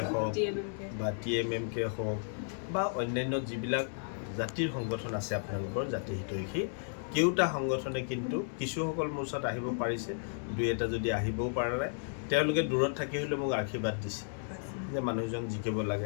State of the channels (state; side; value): silent; right; digital silence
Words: হওক বা TMMK হওক বা অন্যান্য যিবিলাক জাতিৰ সংগঠন আছে আপোনালোকৰ জাতি হিতৈষী কেওটা সংগঠনে কিন্তু কিছুসকল মোৰ ওচৰত আহিব পাৰিছে দুই এটা যদি আহিবও পৰা নাই তেওঁলোকে দূৰত থাকি হ'লেও মোক আশীৰ্বাদ দিছে যে মানুহজন জিকিব